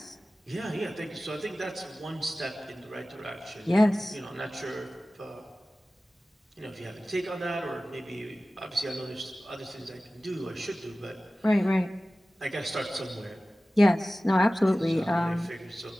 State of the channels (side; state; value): both; normal; correlation 0.96